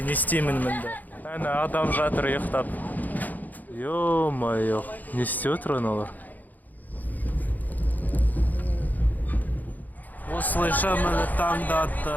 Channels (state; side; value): late; right; 0.082 ms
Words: не істеймін мында? Әне адам жатыр ұйықтап. Ё-моё, не істеп отыр аналар? Осылайша мені таңда атты.